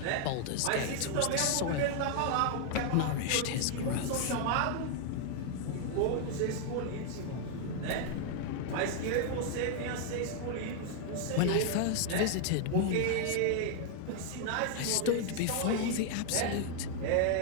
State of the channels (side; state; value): both; different; correlation 0.00